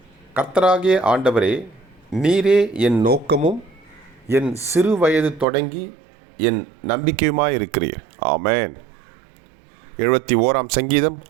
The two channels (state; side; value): drops out; left; at 5.5 s